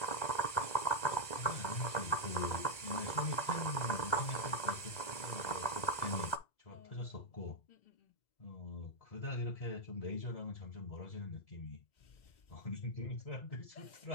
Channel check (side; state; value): right; late; 2.0 ms